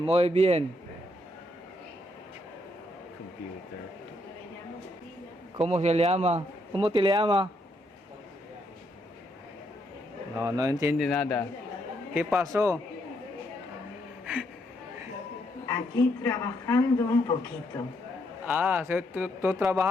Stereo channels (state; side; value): normal; both; correlation 0.75